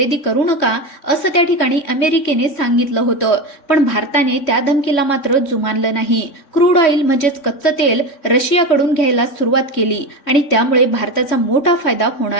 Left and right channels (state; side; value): late; right; 3.6 ms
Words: करू नका असं त्या ठिकाणी अमेरिकेने सांगितलं होतं. पण भारताने त्या धमकीला मात्र जुमानलं नाही. क्रूड ऑइल म्हणजेच कच्चं तेल रशियाकडून घ्यायला सुरुवात केली आणि त्यामुळे भारताचा मोठा फायदा